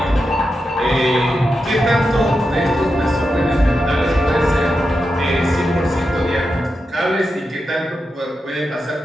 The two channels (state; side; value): normal; both; correlation 0.88